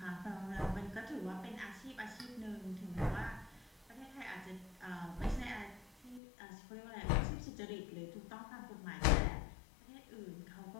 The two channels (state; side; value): drops out; right; at 6.2 s